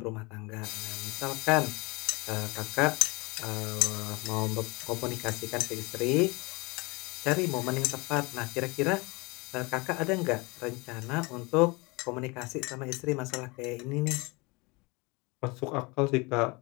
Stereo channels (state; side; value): quieter; right; 26.6 dB